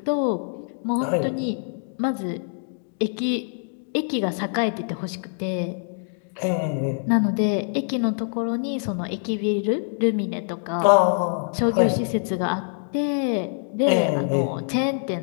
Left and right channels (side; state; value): right; silent; digital silence